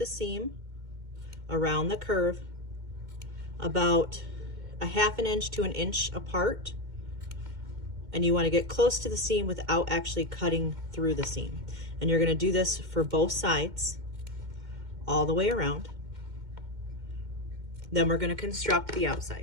seam around the curve about a 1/2 inch to 1 inch apart. And you want to get close to the seam without actually cutting through the seam. And you're going to do this for both sides all the way around. Then we're going to construct the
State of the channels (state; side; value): late; left; 2.1 ms